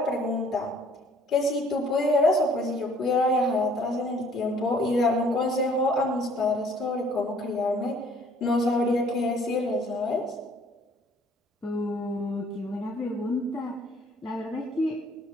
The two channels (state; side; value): normal; both; correlation 0.58